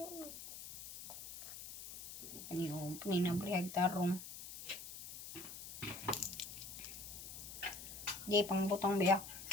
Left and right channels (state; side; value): noise; left; hiss, 11 dB below the sound